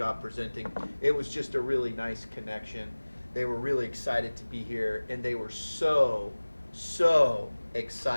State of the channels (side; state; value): both; inverted; correlation -1.00